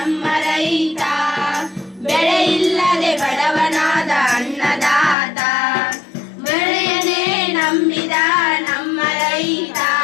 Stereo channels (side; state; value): right; drops out; at 5.2 s